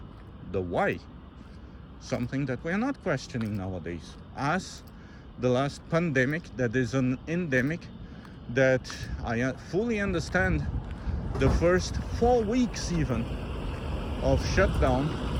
the why. Something that we're not questioning nowadays. As the last pandemic that is an endemic, that I fully understand the first 4 weeks even of shutdown,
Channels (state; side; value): identical; both; correlation 1.00